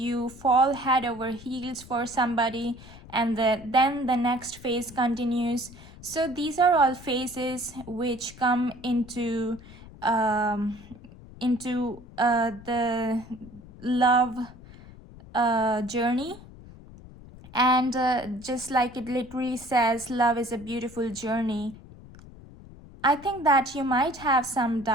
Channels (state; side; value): noise; left; rumble, 19 dB below the sound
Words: fall head over heels for somebody, and then the next phase continues. So these are all phases which come into the love journey. And just like it literally says, love is a beautiful journey. I think that you might have some